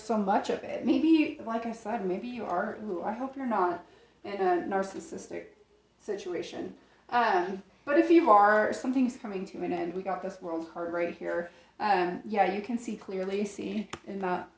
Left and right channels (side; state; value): both; identical; correlation 1.00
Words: much of it. Maybe, like I said, maybe you are, I hope you're not in a narcissistic situation. But if you are, something's coming to an end. We got this World card right here. Yeah, you can see clearly,